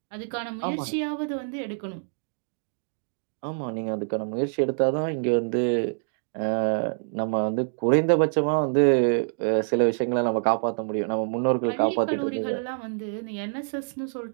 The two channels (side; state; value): left; silent; digital silence